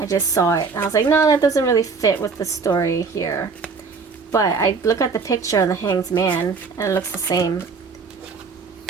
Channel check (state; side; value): quieter; left; 4.8 dB